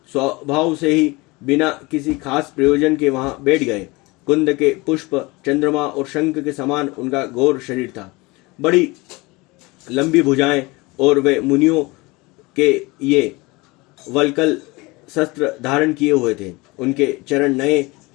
स्वभाव से ही बिना किसी खास प्रयोजन के वहां बैठ गए। कुंद के पुष्प, चंद्रमा और शंख के समान उनका घोर शरीर था। बड़ी लंबी भुजाएं और वे मुनियों के ये वल्कल शस्त्र धारण किए हुए थे। उनके चरण नए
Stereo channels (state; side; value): quieter; right; 23.7 dB